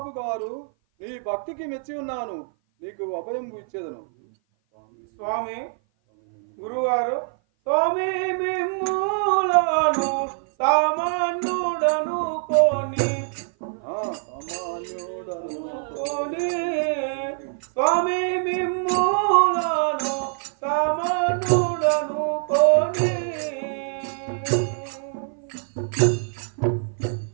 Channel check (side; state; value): left; silent; 56 dB below the other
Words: గారు నీ భక్తికి మెచ్చి ఉన్నాను, నీకు అభయం ఇచ్చేదను. స్వామి గురుగారు, స్వామి మిమ్ములను సామాన్యుడను కోని స్వామి మిమ్ములను సామాన్యుడను కోని